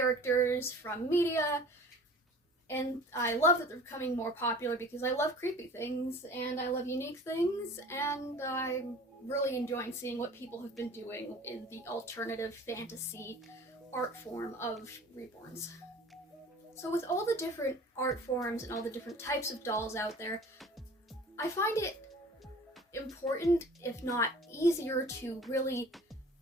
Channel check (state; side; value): normal; both; correlation 0.45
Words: from media. And I love that they're becoming more popular because I love creepy things and I love unique things, and I'm really enjoying seeing what people have been doing in the alternative fantasy art form of reborns. So with all the different art forms and all the different types of dolls out there, I find it important, if not easier, to really